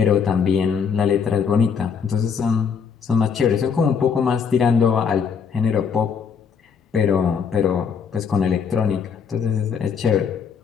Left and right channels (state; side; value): quieter; right; 6.5 dB